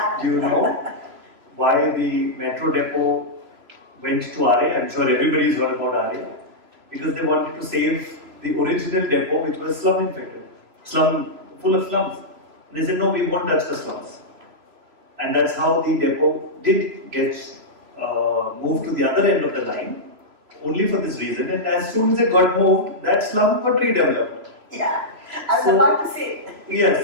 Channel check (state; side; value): late; left; 3.0 ms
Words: Do you know why the metro depot went to RA? I'm sure everybody's heard about RA. Because they wanted to save the original depot, which was slum infected, full of slums. And they said, no, we won't touch the slums. And that's how the depot did get moved to the other end of the line, only for this reason. And as soon as it got moved, that slum got redeveloped. Yeah, I was about to say.